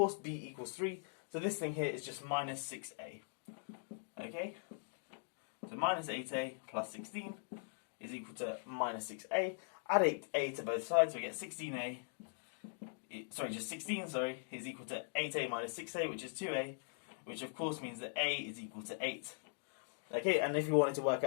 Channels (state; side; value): silent; right; digital silence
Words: b equals 3. So this thing here is just minus 6a. Okay, so minus 8a plus 16 is equal to minus 6a. Add 8a to both sides, so we get 16a. Just 16, is equal to 8a minus 6a, which is 2a, which of course means that a is equal to 8. Okay, and if you wanted to work